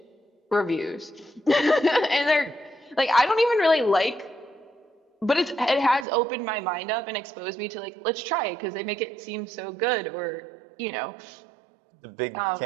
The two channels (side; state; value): left; drops out; at 6.1 s